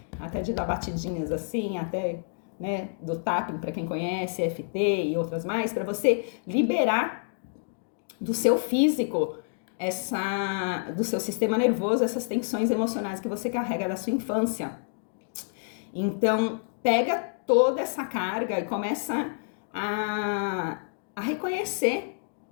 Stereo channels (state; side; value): silent; right; digital silence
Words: até de dar batidinhas assim, até, né, do tapping, para quem conhece, EFT e outras mais, para você liberar do seu físico, do seu sistema nervoso, essas tensões emocionais que você carrega da sua infância. Então, pega toda essa carga e começa a reconhecer